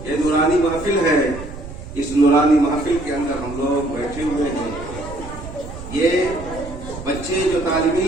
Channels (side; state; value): right; noise; rumble, 12 dB below the sound